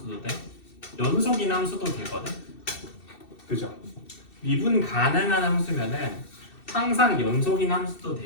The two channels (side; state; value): right; late; 2.7 ms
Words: 돼? 연속인 함수도 되거든. 그죠? 미분 가능한 함수면은 항상 연속인 함수도